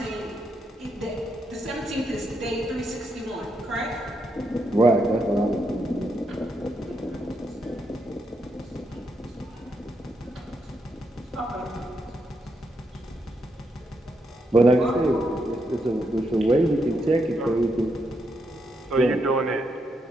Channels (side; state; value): both; normal; correlation 0.80